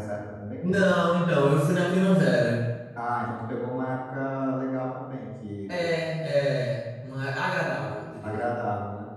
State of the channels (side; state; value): both; identical; correlation 1.00